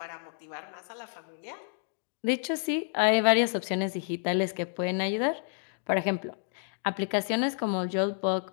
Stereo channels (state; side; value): silent; right; digital silence